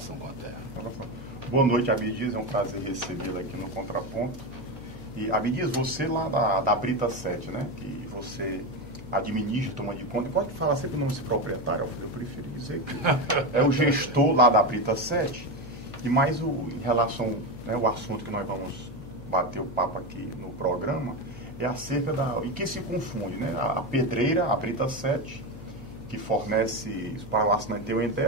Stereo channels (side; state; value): left; noise; hum, 13 dB below the sound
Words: com a terra. Boa noite, Abdias, é um prazer recebê-lo aqui no Contraponto. E, Abdias, você lá da Brita 7, né? Que você administra, toma de conta. Pode falar sempre o nome desse proprietário, eu prefiro dizer que é o gestor lá da Brita 7. E mais em relação, né, o assunto que nós vamos bater o papo aqui no programa, é acerca e que se confunde, né? A pedreira, a Brita 7, que fornece para o assinante ter uma